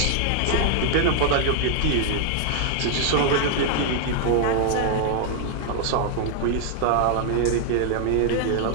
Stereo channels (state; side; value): different; both; correlation 0.00